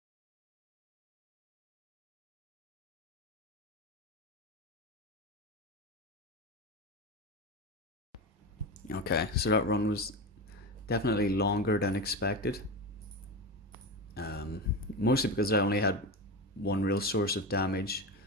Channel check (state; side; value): normal; both; correlation 0.21